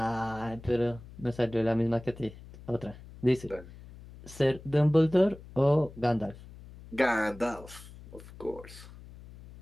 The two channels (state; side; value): noise; left; hum, 18 dB below the sound